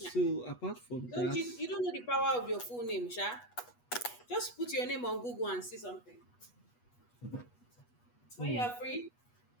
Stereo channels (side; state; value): right; late; 8.2 ms